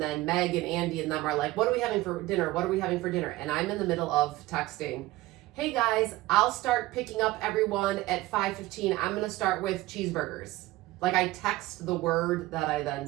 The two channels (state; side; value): quieter; left; 18.1 dB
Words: Meg and Andy and them are like, "What are we having for dinner? What are we having for dinner?" And I'm in the middle of texting, "Hey guys, I'll start picking up everyone at 5:15. I'm gonna start with cheeseburgers." Like I text the word that I then